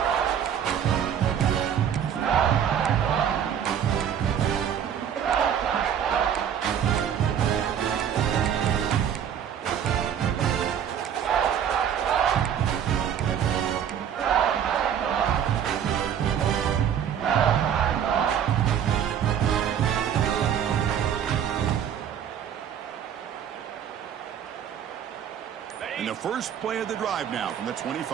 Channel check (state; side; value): quieter; left; 8.9 dB